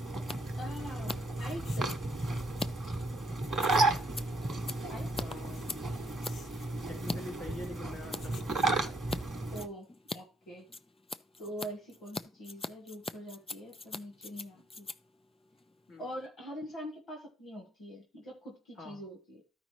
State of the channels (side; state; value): both; normal; correlation 0.71